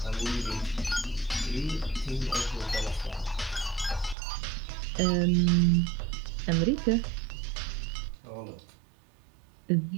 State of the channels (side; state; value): left; drops out; at 4.2 s